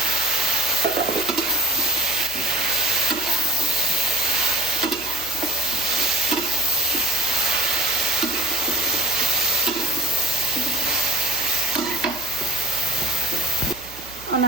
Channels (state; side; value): noise; right; hum, 19 dB below the sound